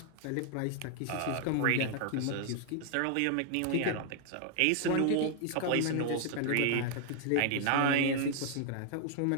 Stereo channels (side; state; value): both; different; correlation 0.00